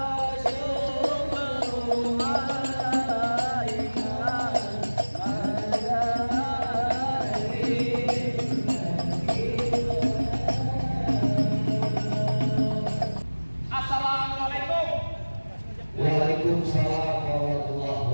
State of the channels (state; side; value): inverted; both; correlation -1.00